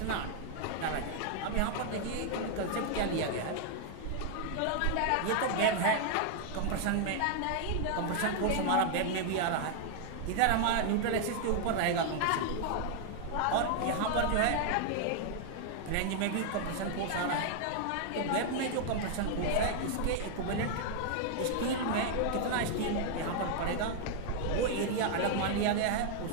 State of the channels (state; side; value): different; both; correlation 0.00